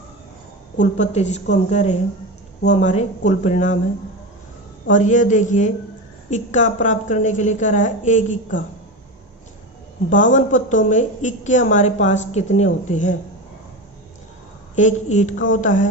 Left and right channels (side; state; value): both; normal; correlation 0.21